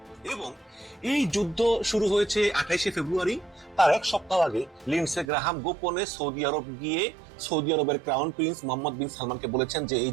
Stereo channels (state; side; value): drops out; left; at 5.2 s